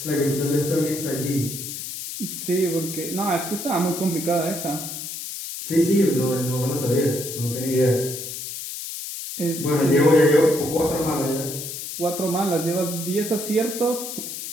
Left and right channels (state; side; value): noise; left; hiss, 7 dB below the sound